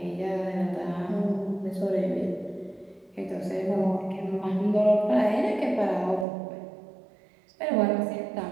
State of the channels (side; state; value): left; drops out; at 6.2 s